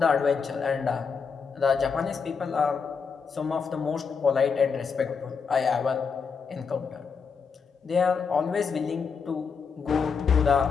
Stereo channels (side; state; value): right; quieter; 5.7 dB